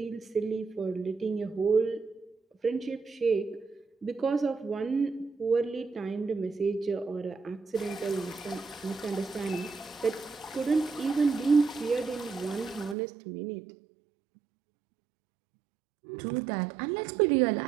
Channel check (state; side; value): drops out; left; at 13.0 s